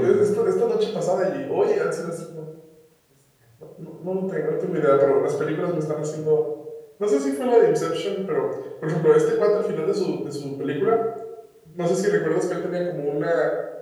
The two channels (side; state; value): both; identical; correlation 1.00